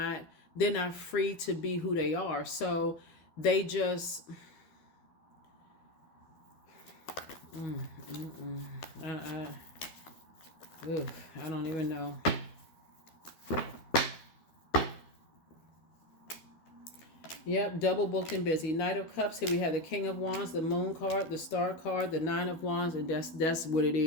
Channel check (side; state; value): right; late; 13 ms